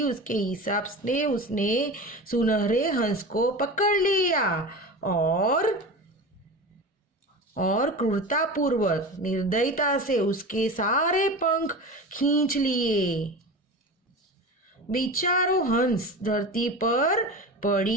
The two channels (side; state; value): both; normal; correlation 0.30